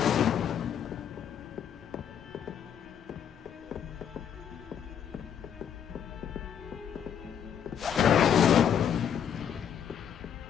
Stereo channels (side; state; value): right; quieter; 8.7 dB